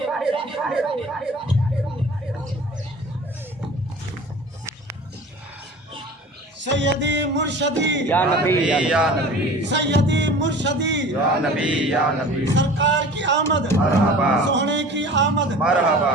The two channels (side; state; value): both; normal; correlation 0.41